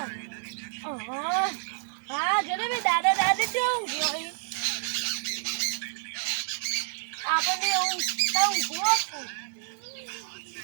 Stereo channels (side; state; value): left; silent; digital silence